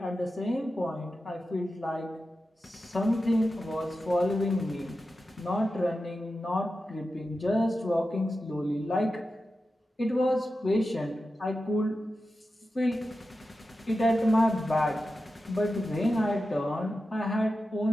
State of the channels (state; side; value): normal; both; correlation 0.92